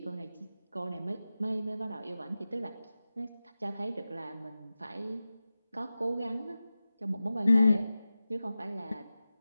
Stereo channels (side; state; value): both; inverted; correlation -0.95